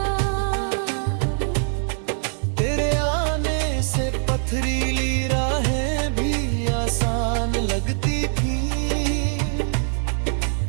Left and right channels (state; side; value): silent; left; digital silence